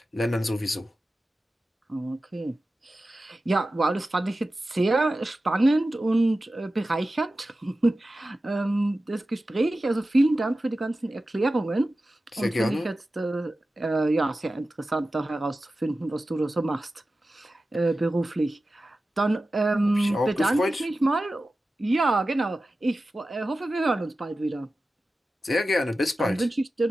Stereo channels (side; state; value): both; normal; correlation 0.94